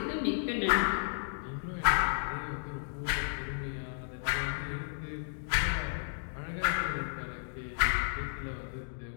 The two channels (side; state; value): right; silent; digital silence